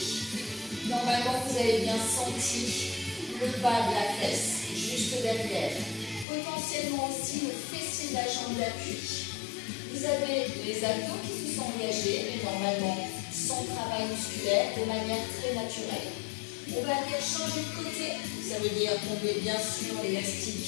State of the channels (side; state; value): right; drops out; at 6.2 s